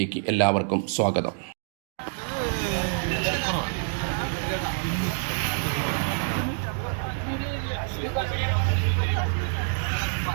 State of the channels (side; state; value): left; silent; digital silence